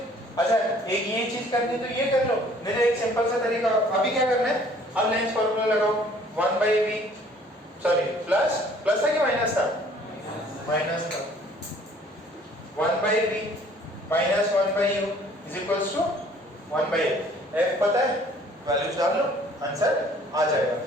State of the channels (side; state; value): both; normal; correlation 0.56